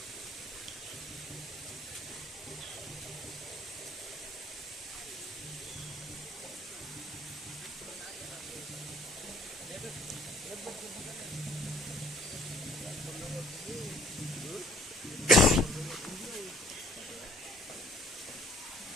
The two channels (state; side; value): normal; both; correlation 0.61